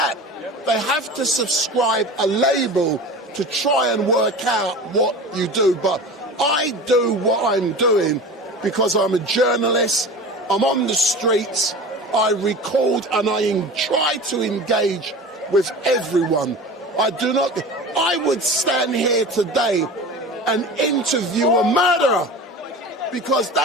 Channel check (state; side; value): normal; both; correlation 0.34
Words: They have to subscribe a label to try and work out what you do. But I do what I'm doing because I'm a journalist, I'm on the streets, I record and I try to engage with everyone. I would stand here today and interview a murderer because